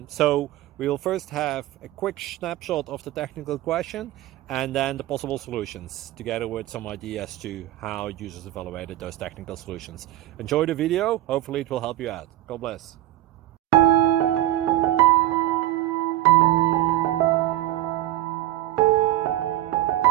So we'll first have a quick snapshot of the technical question and then the possible solutions, together with some ideas to how users evaluated those technical solutions. Enjoy the video, hopefully it will help you out. God bless.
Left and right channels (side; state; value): left; quieter; 14.7 dB